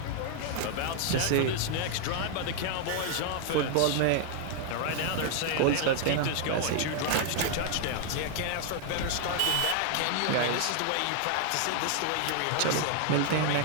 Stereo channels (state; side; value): different; both; correlation 0.00